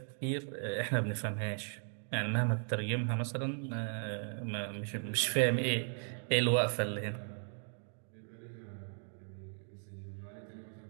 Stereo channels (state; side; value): silent; left; 53 dB below the other